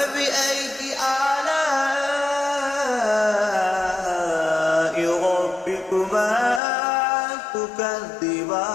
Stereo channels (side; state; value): right; drops out; at 6.6 s